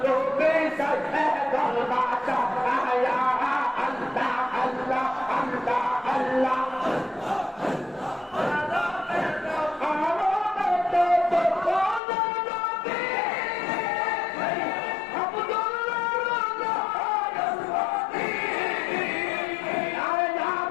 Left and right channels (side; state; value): right; drops out; at 12.0 s